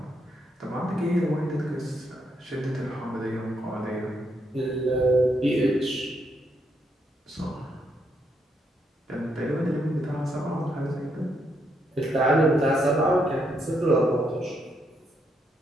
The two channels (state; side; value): normal; both; correlation 0.77